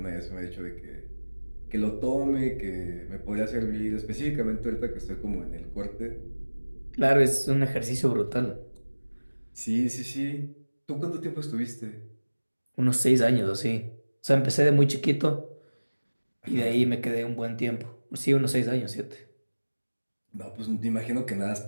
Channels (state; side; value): inverted; both; correlation -1.00